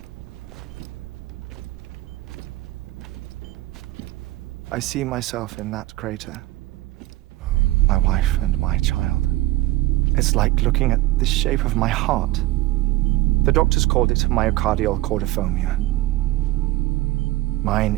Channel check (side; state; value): left; quieter; 17.6 dB